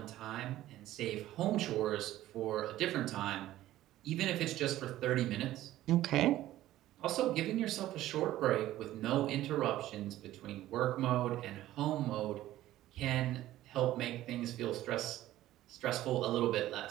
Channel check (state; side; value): quieter; left; 14.5 dB